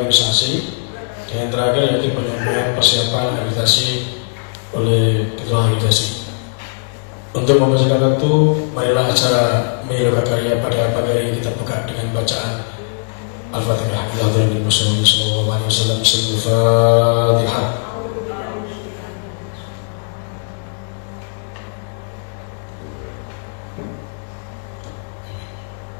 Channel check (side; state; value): right; silent; digital silence